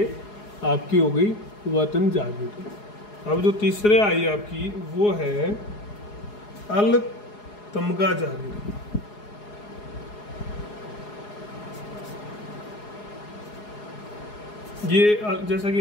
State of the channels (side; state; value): right; late; 4.8 ms